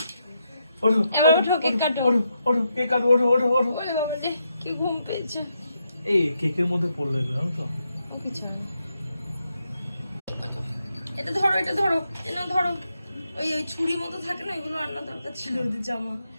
ওঠো, এবার ওঠো, ওঠো, কেক কাটো। ওঠো, ওঠো, কেক কাটো, ওঠো, ওঠো, ওঠো। ওরে বাবা রে, কি ঘুম পেয়েছে। এই কেকের মধ্যে পড়লো এগুলো, জানো তো? ও কিছু হয় না। এটা ধরো, এটা ধরো, এটা ধরো। ওই ওই ছুরি মতো থাকে না, এগুলো আনা দরকার ছিল ওদের জামা।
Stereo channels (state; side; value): inverted; both; correlation -0.82